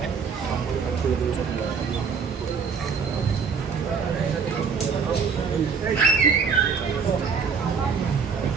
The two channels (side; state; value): left; quieter; 5.9 dB